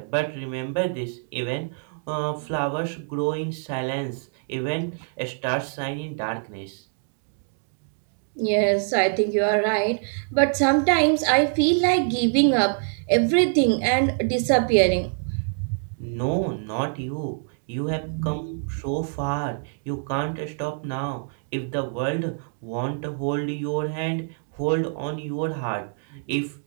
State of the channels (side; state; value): left; silent; 62 dB below the other